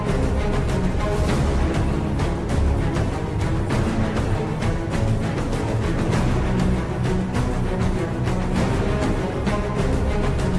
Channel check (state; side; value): identical; both; correlation 1.00